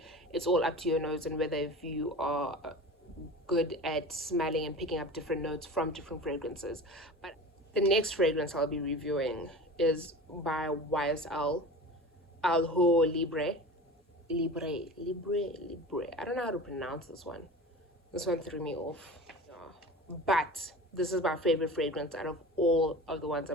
it's all up to your nose and whether if you are good at smelling and picking up different notes from different fragrances. But the next fragrance I'll be reviewing is by YSL L'Homme Libre. Libre. I don't know how to pronounce this one. This one threw me off. Yeah. But this is my favorite fragrance out of all of the ones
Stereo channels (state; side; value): normal; both; correlation 0.35